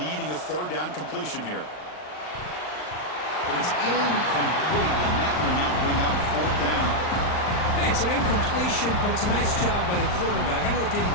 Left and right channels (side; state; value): right; late; 39 ms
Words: a third down completion here. But it's incomplete, and that will not bring up fourth down. Hey, it's an incompletion, but it's a nice job by the quarterback. I know it didn't